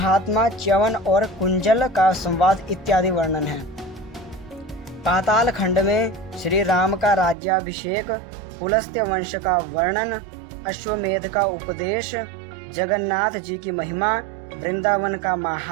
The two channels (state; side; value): drops out; left; at 7.4 s